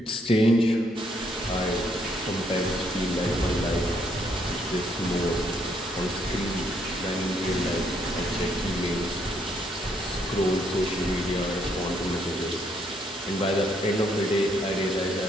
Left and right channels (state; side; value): normal; both; correlation 0.71